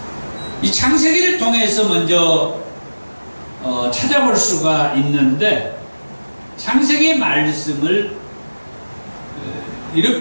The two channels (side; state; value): both; inverted; correlation -1.00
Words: 이 창세기를 통해서 먼저 찾아볼 수가 있는데, 창세기의 말씀을